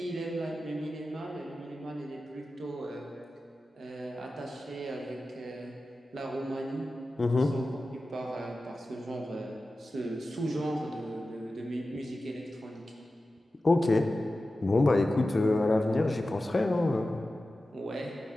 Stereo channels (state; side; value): normal; both; correlation 0.94